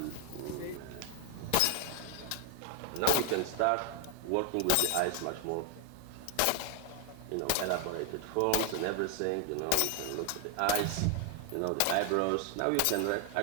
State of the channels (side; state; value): both; different; correlation 0.00